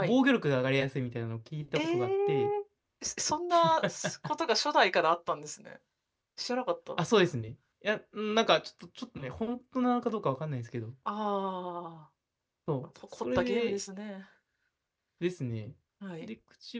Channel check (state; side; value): identical; both; correlation 1.00